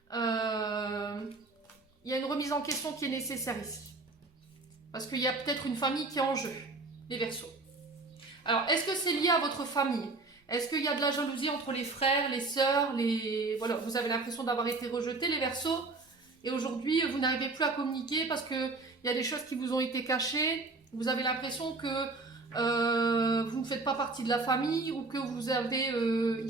Il y a une remise en question qui est nécessaire ici. Parce qu'il y a peut-être une famille qui est en jeu. Les Verseaux. Alors, est-ce que c'est lié à votre famille? Est-ce qu'il y a de la jalousie entre les frères, les sœurs, Voilà, vous avez l'impression d'avoir été rejeté, les Verseaux, et aujourd'hui, vous n'arrivez plus à communiquer parce qu'il y a des choses qui vous ont été cachées. Vous avez l'impression que vous ne faites pas partie de la famille ou que vous avez... Il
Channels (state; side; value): quieter; left; 3.5 dB